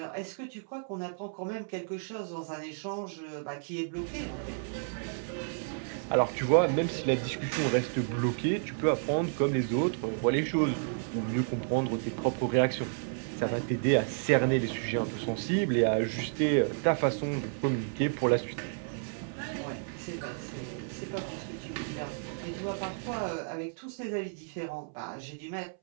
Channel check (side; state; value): left; silent; 57 dB below the other